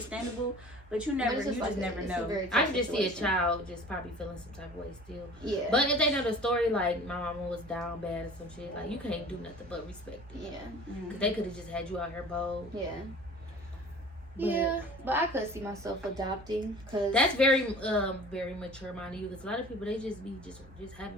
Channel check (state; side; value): normal; both; correlation 0.43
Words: but you But never, it's you like just never it's a know. very I tough can just see a situation. child just probably feeling some type of way still. Yeah. But if they know the story, like my mama was down bad or some shit, like you can't do nothing but respect it. Yeah. Mm. Cause they could have just had you out here bold. Yeah. But- Yeah, but I could see myself adopting because That's very mature minded you. Cause a lot of people they just be just having